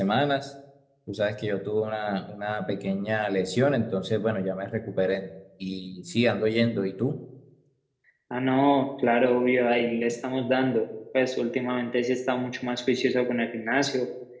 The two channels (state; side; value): identical; both; correlation 1.00